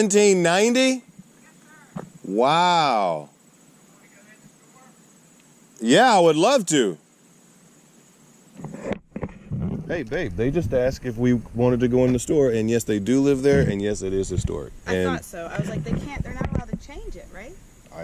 Yes, sir. Wow. Yeah, I would love to. Hey, babe, they just asked if we wanted to go in the store, and yes, they do live there, and yes, it is historic. I thought so. I was like, they're not allowed to change it, right?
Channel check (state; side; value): identical; both; correlation 1.00